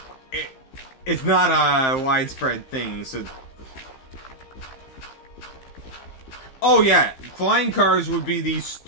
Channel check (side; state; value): right; late; 15 ms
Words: it's not a widespread thing, so... Oh yeah, flying cars would be the